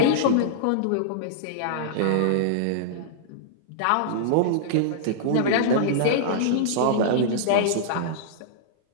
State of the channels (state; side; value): different; both; correlation -0.02